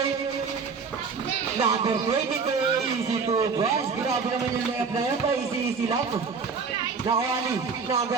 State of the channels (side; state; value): left; quieter; 5.3 dB